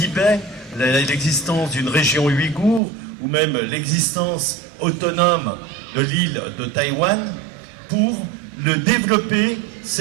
l'existence d'une région ouïghour, ou même l'existence autonome de l'île de Taïwan, pour le développer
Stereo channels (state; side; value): drops out; left; at 2.8 s